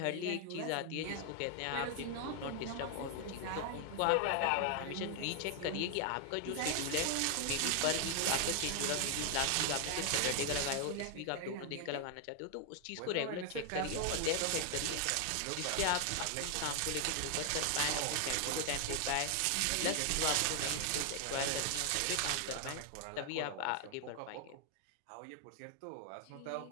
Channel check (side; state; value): both; different; correlation 0.00